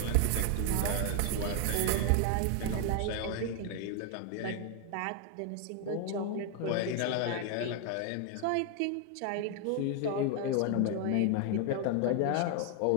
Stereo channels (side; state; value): both; different; correlation 0.00